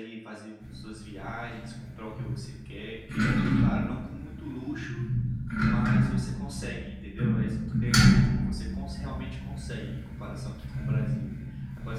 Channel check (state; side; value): identical; both; correlation 1.00